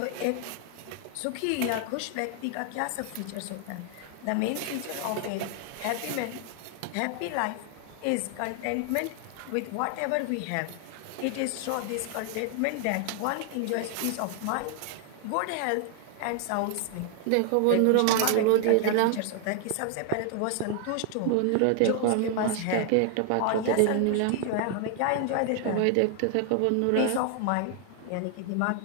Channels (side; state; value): both; different; correlation 0.00